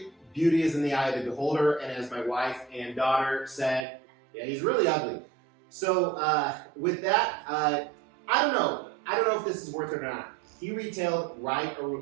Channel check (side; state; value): left; drops out; at 3.9 s